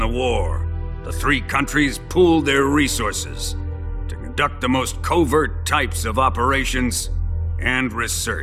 war, the three countries pooled their resources to conduct the most covert types of operations and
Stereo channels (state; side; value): identical; both; correlation 1.00